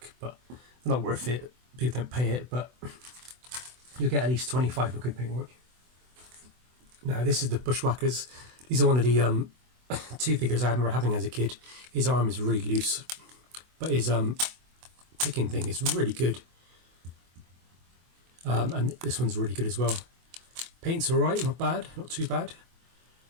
but they're not worth it. People don't pay it, but you'll get at least 25 with good paintwork. Now this is the Bushwackers. These are one of the 2 figures I remember having as a kid. His arm is really loose, but his picking thing is really good. And this one's really good as well. Paint's alright, not bad, not too bad.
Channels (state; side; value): late; left; 24 ms